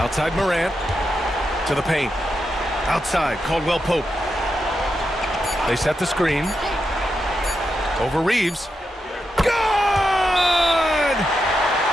Morant to the paint. Outside Caldwell Pope. They set the screen. Over Reeves. Good!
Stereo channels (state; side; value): normal; both; correlation 0.86